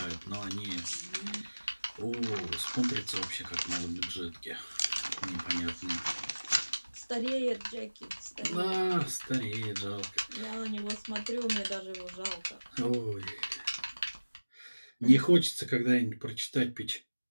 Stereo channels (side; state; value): both; inverted; correlation -1.00